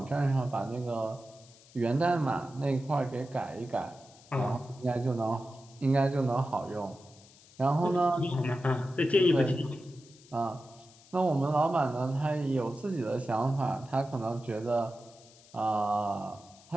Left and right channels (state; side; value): noise; left; hiss, 25 dB below the sound